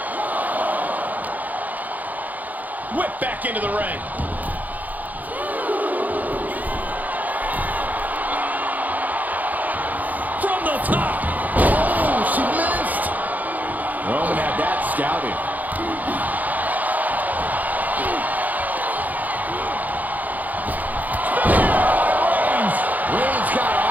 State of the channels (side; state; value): left; late; 0.080 ms